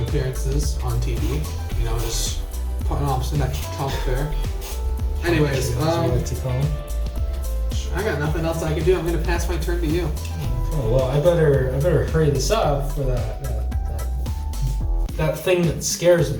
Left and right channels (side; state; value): both; identical; correlation 1.00